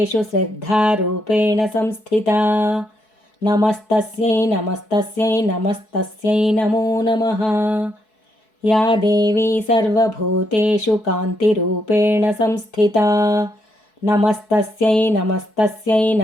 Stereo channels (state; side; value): late; right; 4.6 ms